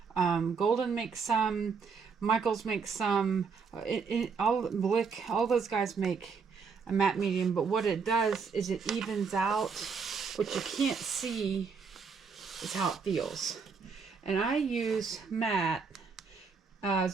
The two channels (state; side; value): quieter; left; 5.4 dB